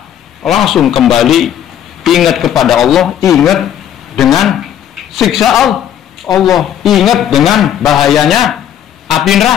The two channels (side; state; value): right; quieter; 10.1 dB